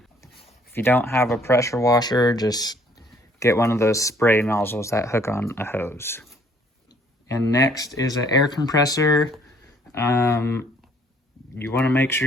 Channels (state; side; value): normal; both; correlation 0.61